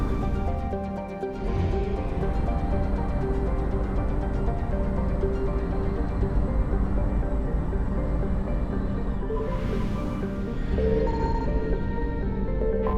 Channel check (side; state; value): both; identical; correlation 1.00